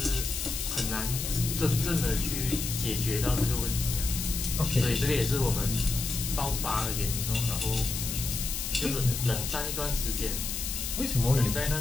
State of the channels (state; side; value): noise; left; hiss, 4 dB below the sound